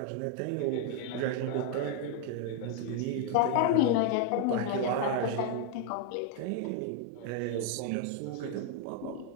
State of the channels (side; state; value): both; different; correlation 0.00